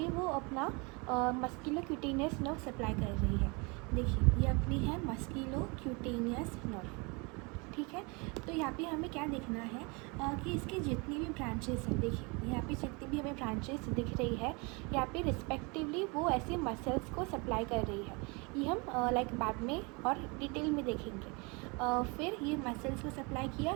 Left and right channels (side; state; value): left; quieter; 29.4 dB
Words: वो अपना मस्कुलोक्यूटेनियस नर्व सप्लाई कर रही है। देखिए, ये अपनी है मस्कुलोक्यूटेनियस नर्व, ठीक है। तो यहाँ पे हमें क्या देखना है कि इसके जितनी भी ब्रांचेस हैं, देखिए यहाँ पे जितनी भी हमें ब्रांचेस दिख रही है, यहाँ पे रिस्पेक्टिवली वो ऐसे मसल्स को सप्लाई कर रही है। ये हम लाइक बाद में और डिटेल में देखेंगे। फिर ये मसल्स को सप्लाई